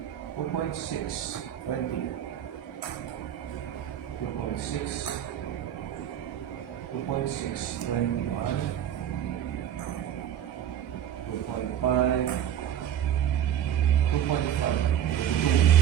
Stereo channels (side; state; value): left; quieter; 10.3 dB